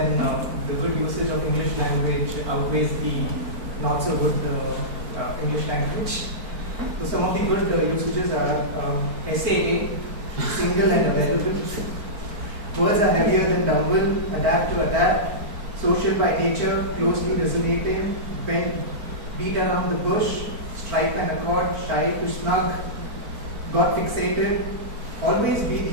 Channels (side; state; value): left; late; 4.5 ms